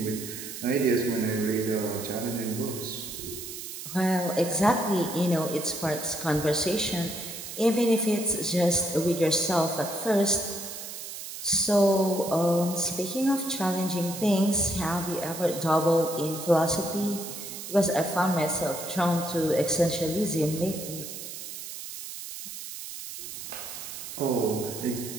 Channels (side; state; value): right; noise; hiss, 9 dB below the sound